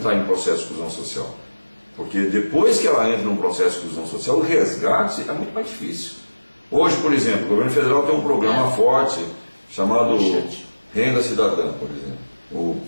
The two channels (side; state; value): both; inverted; correlation -1.00